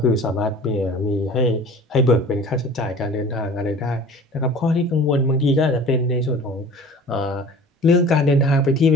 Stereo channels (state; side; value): normal; both; correlation 0.43